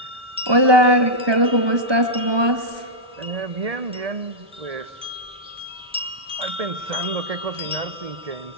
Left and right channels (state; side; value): late; left; 1.2 ms